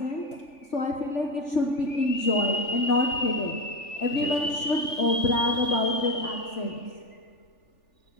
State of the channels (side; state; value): right; late; 3.4 ms